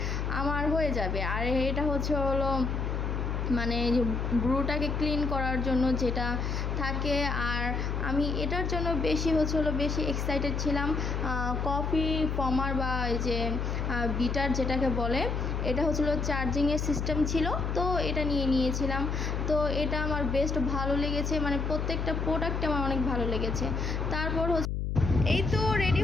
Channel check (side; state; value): left; noise; hum, 1 dB below the sound